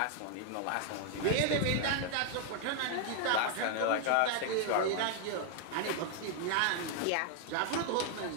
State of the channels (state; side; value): different; both; correlation 0.00